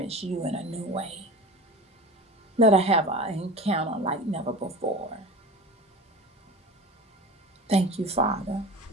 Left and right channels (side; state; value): both; normal; correlation 0.33